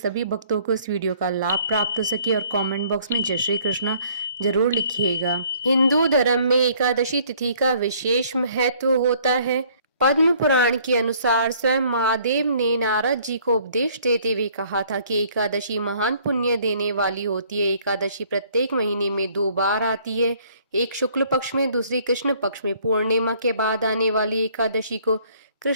भक्तों को इस वीडियो का लाभ प्राप्त हो सके। और कमेंट बॉक्स में जय श्री कृष्ण जरूर लिखिएगा। हिंदू धर्म में एकादशी तिथि का विशेष महत्व होता है। पद्म पुराण के अनुसार स्वयं महादेव ने नारद जी को उपदेश देते हुए कहा था कि एकादशी महान पुण्य देने वाली होती है। एकादशी प्रत्येक महीने में 2 बार आती है, एक शुक्ल पक्ष में, दूसरी कृष्ण पक्ष में। पूर्णिमा के बाद आने वाली एकादशी को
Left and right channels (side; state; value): both; inverted; correlation -0.60